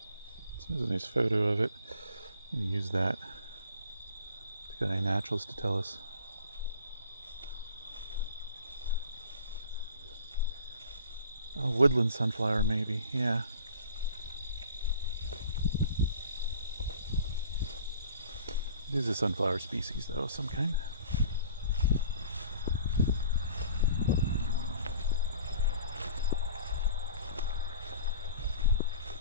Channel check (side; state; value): both; inverted; correlation -0.46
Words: There's a nice photo of it. I'm going to use that to get a naturalist to tell us. Oh, woodland sunflower maybe, yeah. It is a sunflower species though, of some kind.